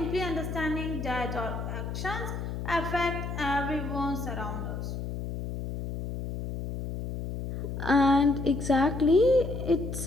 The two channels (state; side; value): noise; left; hum, 5 dB below the sound